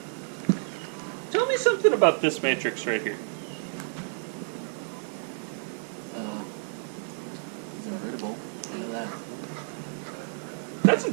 Tell me something about this matrix right here. It's invertible. Look at that. That's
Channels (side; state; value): left; silent; 58 dB below the other